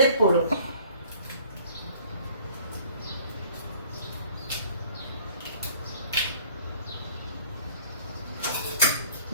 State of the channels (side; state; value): both; inverted; correlation -0.53